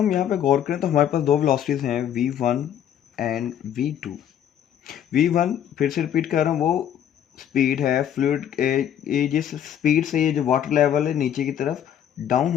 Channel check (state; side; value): quieter; right; 9.9 dB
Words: यहाँ पे गौर करें तो हमारे पास दो वेलोसिटीज हैं v1 एंड v2। v1 फिर से रिपीट कर रहा हूँ, वो स्पीड है फ्लूइड, ये जिस स्पीड से ये जो वाटर लेवल है नीचे की तरफ डाउन